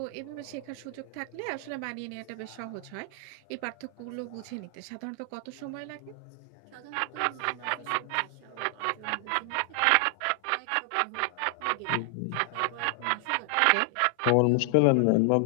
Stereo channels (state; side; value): different; both; correlation 0.00